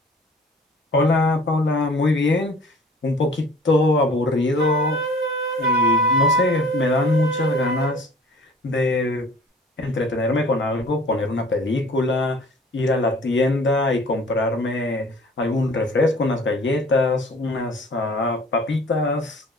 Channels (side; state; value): both; normal; correlation 0.49